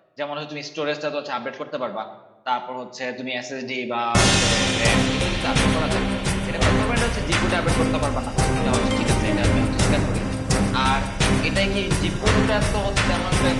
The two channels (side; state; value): both; identical; correlation 1.00